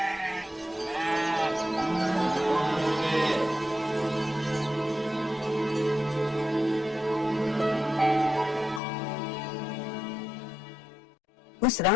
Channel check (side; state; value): right; drops out; at 8.8 s